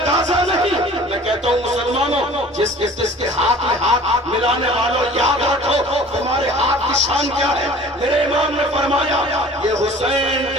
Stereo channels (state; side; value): normal; both; correlation 0.46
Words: نہیں۔ میں کہتا ہوں مسلمانوں جس کے ہاتھ میں ہاتھ ملانے والوں یاد رکھو تمہارے ہاتھ کی شان کیا ہے۔ میرے امام نے فرمایا یہ حسین